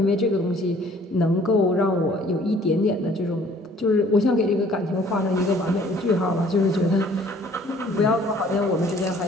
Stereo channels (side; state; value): both; normal; correlation 0.56